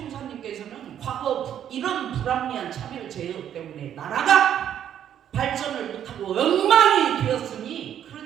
과거 이런 불합리한 차별 제어 때문에 나라가 발전을 못하고 엉망이 되었으니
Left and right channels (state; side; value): quieter; left; 10.0 dB